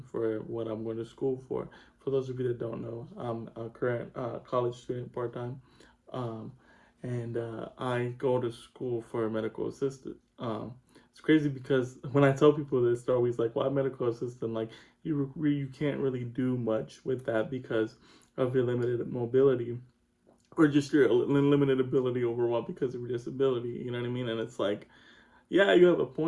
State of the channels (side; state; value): both; identical; correlation 1.00